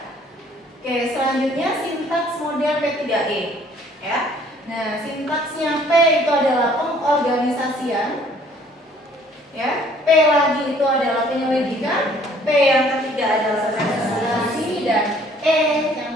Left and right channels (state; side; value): normal; both; correlation 0.58